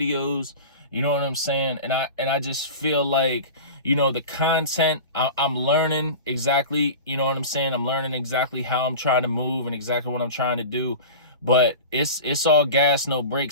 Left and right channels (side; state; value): both; inverted; correlation -0.33